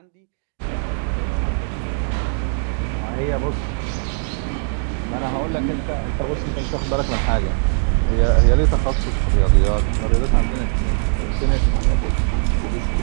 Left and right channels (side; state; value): left; silent; digital silence